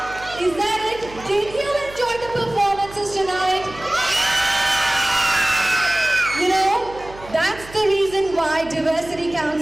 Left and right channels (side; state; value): right; noise; hum, 18 dB below the sound